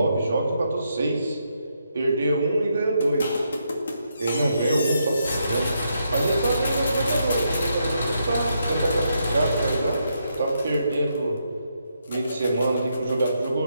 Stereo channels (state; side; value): inverted; both; correlation -0.79